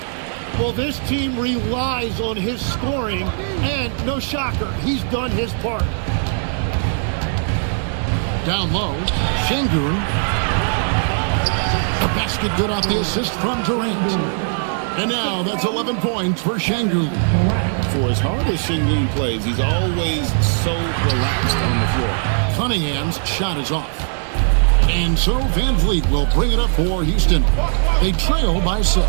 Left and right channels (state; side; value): silent; left; digital silence